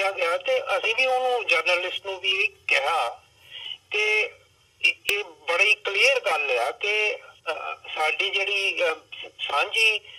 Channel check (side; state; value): both; identical; correlation 1.00